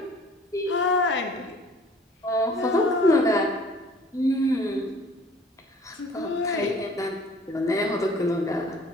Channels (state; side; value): normal; both; correlation 0.52